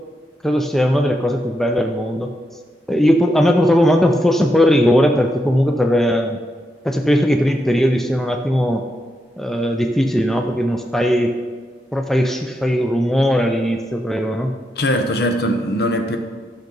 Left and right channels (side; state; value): both; normal; correlation 0.83